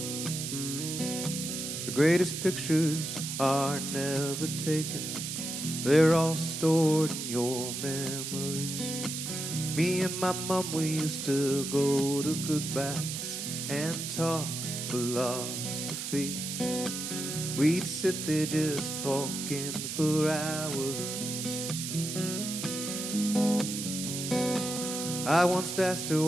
The greatest pictures are never taken, they're all stored in your memories. Me and my mom, we used to go to goodbyes and talk philosophy. We'd sit there just talking for hours. I once asked her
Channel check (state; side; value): noise; right; hiss, 5 dB below the sound